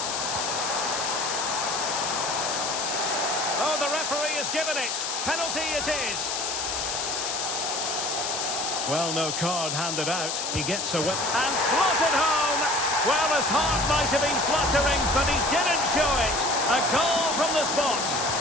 Oh, the referee has given it. Penalty it is. Well, no card handed out. He gets a whip and slotted home. Well, his heart might have been fluttering, but he didn't show it. A goal from the spot.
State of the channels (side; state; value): left; noise; hiss, 2 dB below the sound